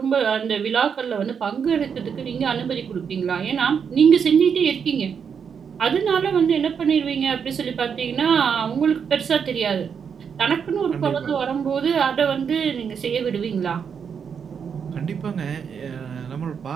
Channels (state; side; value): quieter; left; 6.9 dB